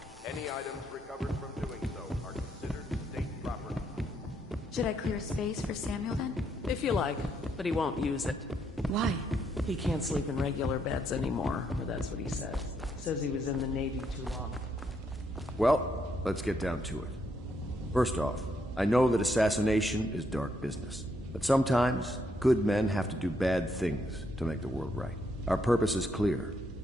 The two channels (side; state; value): both; normal; correlation 0.75